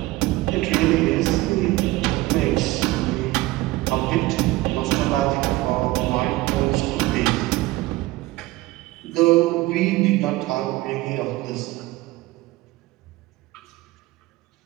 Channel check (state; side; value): quieter; left; 18.8 dB